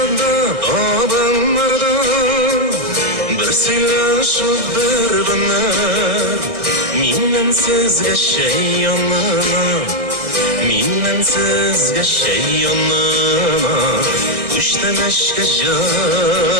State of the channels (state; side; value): late; left; 1.8 ms